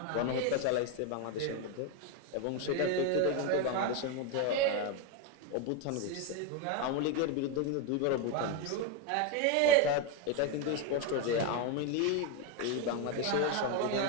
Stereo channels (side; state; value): both; different; correlation 0.02